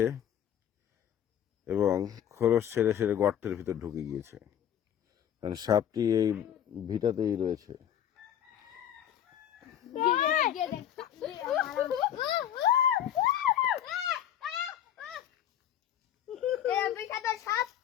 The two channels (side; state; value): right; quieter; 10.2 dB